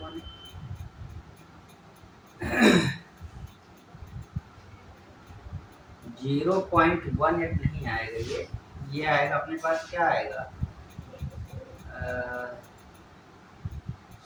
0.18 नहीं आएगा ये आएगा अपने पास, क्या आएगा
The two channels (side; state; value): both; identical; correlation 1.00